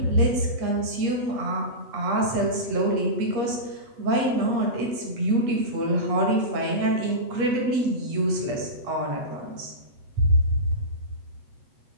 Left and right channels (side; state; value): left; late; 8.3 ms